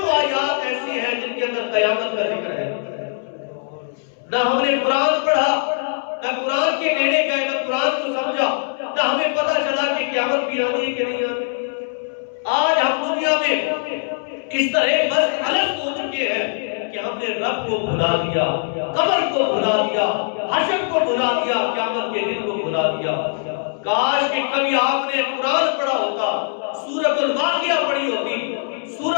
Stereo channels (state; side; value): silent; right; 65 dB below the other